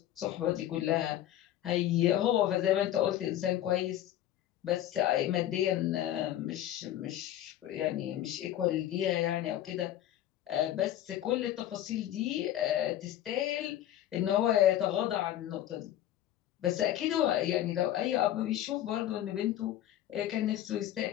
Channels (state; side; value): quieter; right; 12.4 dB